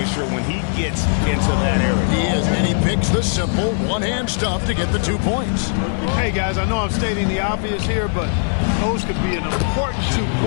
when he gets into that area. He is, and he picks the simple one-hand stuff to get the 2 points. Hey, guys, I know I'm stating the obvious here, but those could be an important 2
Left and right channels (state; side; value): silent; right; digital silence